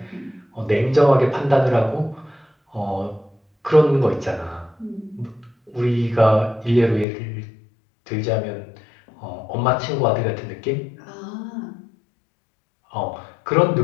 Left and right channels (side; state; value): right; drops out; at 7.1 s